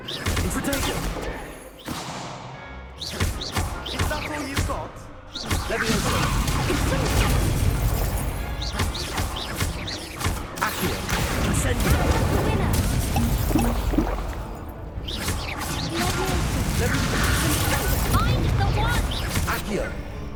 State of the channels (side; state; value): both; identical; correlation 1.00